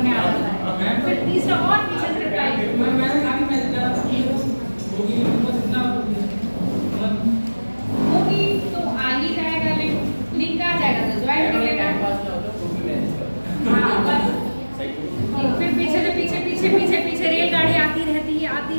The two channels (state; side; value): inverted; both; correlation -1.00